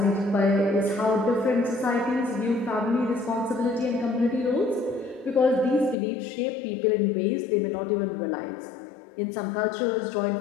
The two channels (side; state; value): right; drops out; at 6.0 s